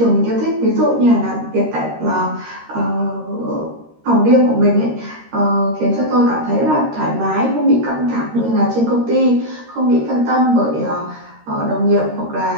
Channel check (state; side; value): late; left; 13 ms